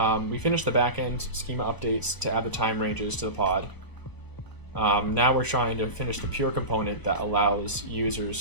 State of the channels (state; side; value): late; right; 1.0 ms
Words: we finished the backend schema updates to add the time ranges to the pod. Now we're trying to finish the pure component that allows